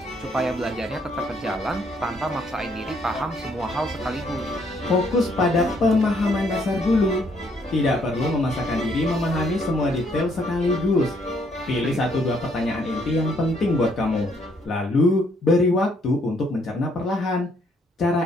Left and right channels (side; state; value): both; normal; correlation 0.68